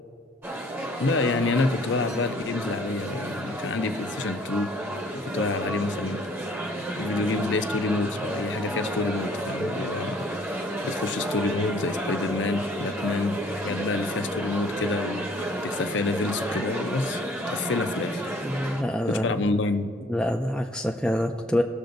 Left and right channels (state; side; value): normal; both; correlation 0.58